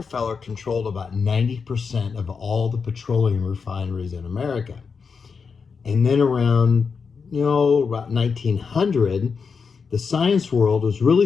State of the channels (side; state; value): right; quieter; 5.5 dB